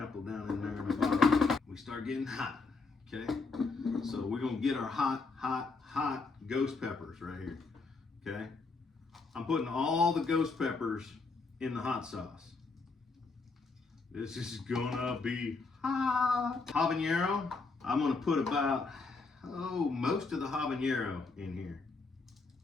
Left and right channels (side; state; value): right; quieter; 4.1 dB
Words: down in there in the bottom. We start getting hot, okay? So we're gonna get our hot ghost peppers right here, okay? I'm putting all the ghost peppers in the hot sauce. This is gonna be hot. Habanero, I'm gonna put about, most of the habanero in here,